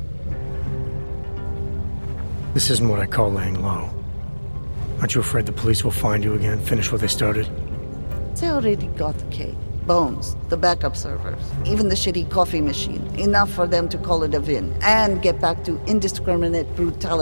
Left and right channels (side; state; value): both; inverted; correlation -1.00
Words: This isn't what I call laying low. Aren't you afraid the police will find you again, finish what they started? They already got the K. Bones, the backup servers, even the shitty coffee machine. Enough for them to call it a win and get back to indiscriminate